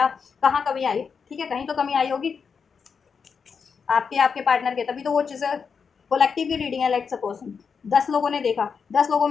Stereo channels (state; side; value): quieter; right; 6.0 dB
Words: कहाँ कमी आई, ठीक है, कहीं तो कमी आई होगी आपके आपके पार्टनर के, तभी तो वो चीज़ें। कोलेक्टिव की रीडिंग है, लाइक सपोज 10 लोगों ने देखा, 10 लोगों